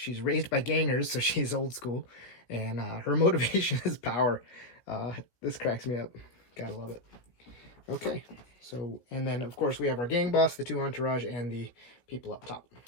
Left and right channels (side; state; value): right; late; 17 ms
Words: raised by gangers, so she's old school, and her motivation is power. This cracks me up. Gotta love it. Okay. So, and then, of course, we have our gang boss, the two entourage, and the people up top.